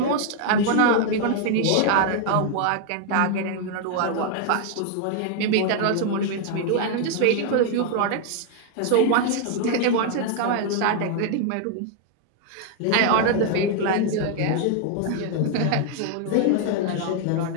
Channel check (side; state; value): both; different; correlation 0.00